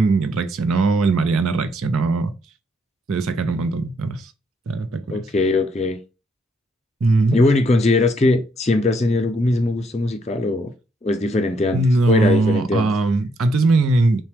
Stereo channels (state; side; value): normal; both; correlation 0.73